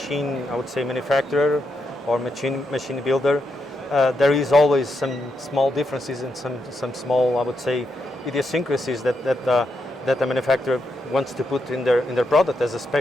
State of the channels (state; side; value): normal; both; correlation 0.82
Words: I would say manufacturer or machine builder, there is always some small differences and some small, I would say, idiosyncrasies that the manufacturer wants to put in their product as a